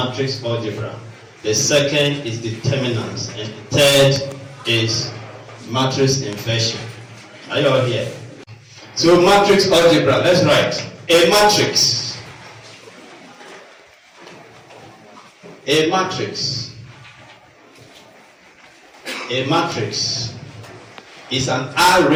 algebra. The second is determinants. And the third is matrix inversion. Are you all here? So matrix algebra, let's write. A matrix. A matrix. A matrix is an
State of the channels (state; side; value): identical; both; correlation 1.00